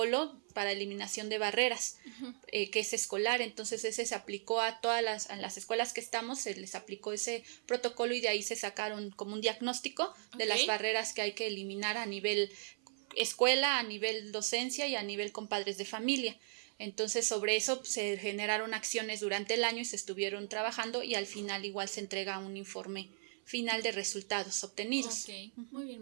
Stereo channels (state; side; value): silent; left; 53 dB below the other